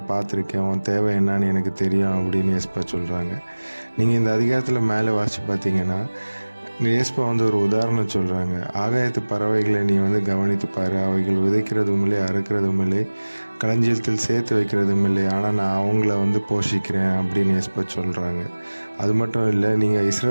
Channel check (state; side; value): inverted; both; correlation -1.00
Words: பார்த்துருக்கேன், உன் தேவை என்னன்னு எனக்கு தெரியும் அப்படின்னு ஏசப்பா சொல்கிறாங்க. நீங்கள் இந்த அதிகாரத்தில் மேலே வாசித்து பார்த்தீங்கன்னா ஏசப்பா ஒரு உதாரணம் சொல்கிறாங்க. ஆகாயத்து பறவைகளை நீ கவனித்து பாரு, அவைகள் விதைக்கிறதும் இல்லை, அறுக்கிறதும் இல்லை, களஞ்சியத்தில் சேர்த்து வைக்கிறதும் இல்லை, ஆனால் நான் அவங்கள போஷிக்கிறேன் அப்படின்னு ஏசப்பா சொல்கிறாங்க. அது மட்டும் இல்லை, நீங்கள்